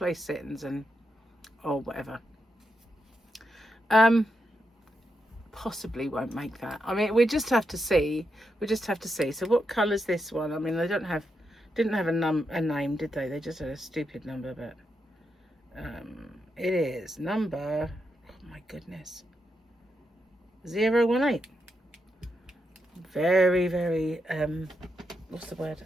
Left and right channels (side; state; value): both; normal; correlation 0.84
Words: settings and or whatever. Possibly won't make that. I mean, we just have to see. We just have to see. So what colour's this one? I mean, they didn't have a name, did they? They just had a stupid number, but it is number. Oh my goodness. 018. Very, very. What's the word?